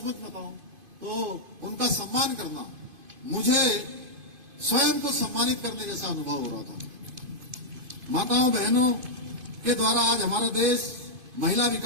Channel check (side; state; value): left; late; 2.5 ms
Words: बताऊं तो उनका सम्मान करना मुझे स्वयं को सम्मानित करने जैसा अनुभव हो रहा था। माताओं बहनों के द्वारा आज हमारा देश महिला